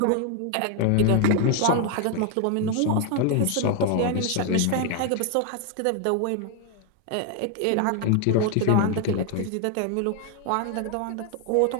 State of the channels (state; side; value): different; both; correlation 0.01